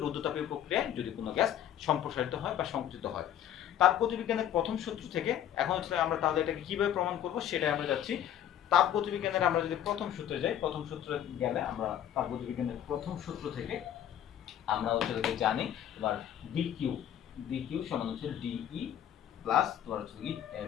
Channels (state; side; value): quieter; right; 10.6 dB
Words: রুদ্ধতাপীয় প্রক্রিয়ায় যদি কোনো গ্যাস সম্প্রসারিত হয় বা সংকুচিত হয়। তাপগতিবিজ্ঞানের প্রথম সূত্র থেকে এখন আমরা তাহলে এটাকে কিভাবে প্রমাণ করব সেটাই আমরা যাচ্ছি। তাপগতিবিজ্ঞানের আমরা যদি প্রথম সূত্রে যাই, প্রথম সূত্রে গেলে আমরা তাপগতিবিজ্ঞানের প্রথম সূত্র থেকে আমরা জানি তোমার ডিকিউ সমান ডিই প্লাস তোমার